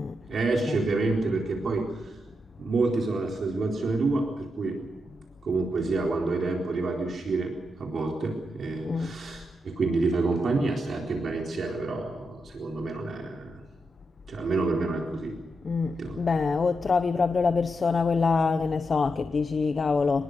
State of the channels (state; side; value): normal; both; correlation 0.84